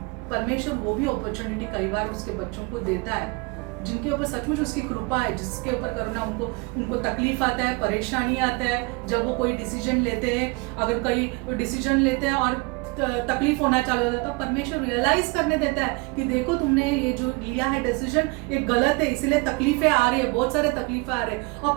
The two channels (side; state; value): left; quieter; 28.2 dB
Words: परमेश्वर वो भी अपॉर्चुनिटी कई बार उसके बच्चों को देता है जिनके ऊपर सचमुच उसकी कृपा है, जिसके ऊपर करुणा। उनको तकलीफ आता है, परेशानी आता है जब वो कोई डिसीजन लेते हैं। अगर कोई डिसीजन लेते हैं और तकलीफ होना चालू हो जाता है, तो परमेश्वर रियलाइज करने देता है कि देखो तुमने ये जो लिया है डिसीजन ये गलत है, इसलिए तकलीफें आ रही है, बहुत सारे तकलीफें आ रहे हैं। और